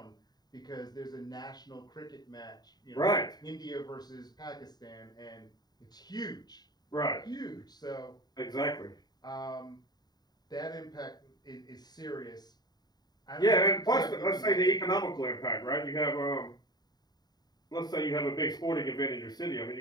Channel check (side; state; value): right; late; 0.20 ms